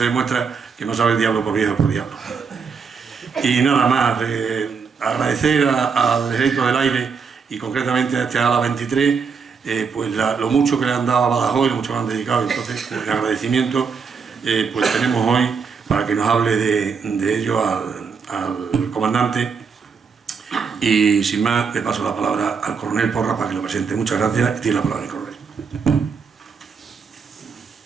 demuestra que no sabe el diablo por viejo por diablo. Y nada más, agradecer al Ejército del Aire y concretamente a este ALA 23, pues lo mucho que le han dado a Badajoz y lo mucho que le han dedicado. Entonces, pues, el agradecimiento pues tenemos hoy para que nos hable de ello al comandante. Y sin más, le paso la palabra al coronel Porra para que lo presente. Muchas gracias y tiene la palabra el coronel.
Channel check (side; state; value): left; quieter; 5.6 dB